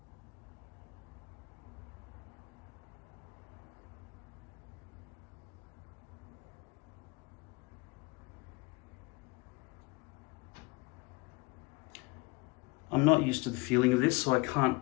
I'm not used to the feeling of this, so I can't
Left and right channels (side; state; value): right; quieter; 25.4 dB